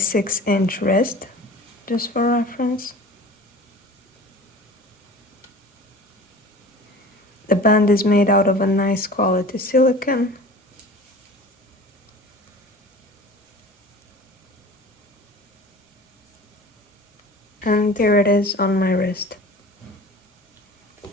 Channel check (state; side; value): normal; both; correlation 0.40